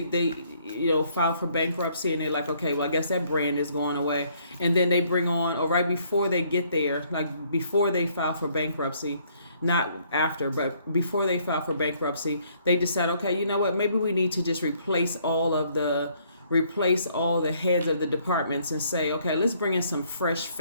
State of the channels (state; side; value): inverted; both; correlation -0.66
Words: file for bankruptcy, and they're like, okay, well, I guess that brand is going away. And then they bring on, or right before they get there, like before they file for bankruptcy, not after, but before they file for bankruptcy, they decide, okay, you know what, maybe we need to just replace all the heads of the departments and say, okay, let's bring in some fresh